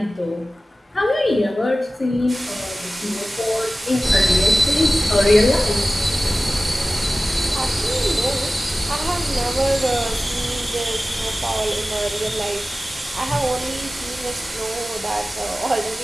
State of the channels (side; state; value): both; normal; correlation 0.96